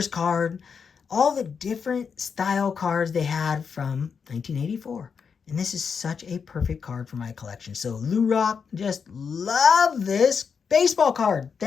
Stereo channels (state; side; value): quieter; right; 6.2 dB